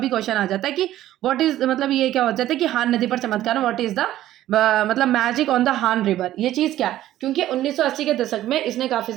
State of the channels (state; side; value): quieter; left; 13.6 dB